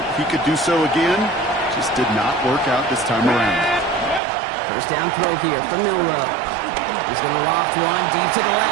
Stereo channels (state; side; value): drops out; left; at 4.2 s